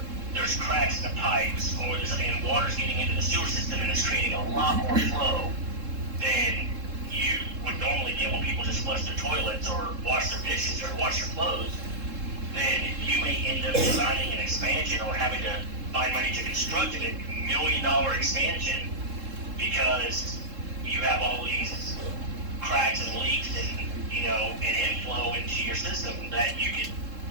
there's cracks in the pipes, and water's getting into the sewer system and it's creating a lot more flow than you would normally get when people just flush their toilets or wash their dishes or wash their clothes. Then you may end up designing an expansion or having to find money to construct a $1 million expansion because you have all these cracks and leaks and inflow into your system that you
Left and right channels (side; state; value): left; late; 3.7 ms